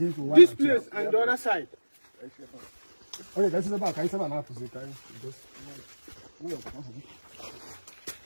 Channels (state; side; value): inverted; both; correlation -1.00